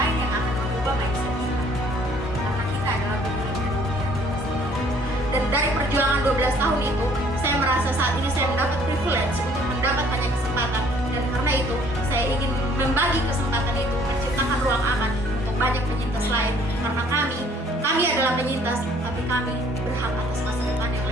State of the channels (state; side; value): normal; both; correlation 0.59